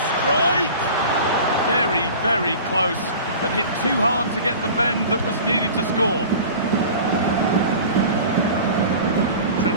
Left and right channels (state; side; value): inverted; both; correlation -0.39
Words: strike! Very, very close, but hit too hard to get the bend that was needed to score.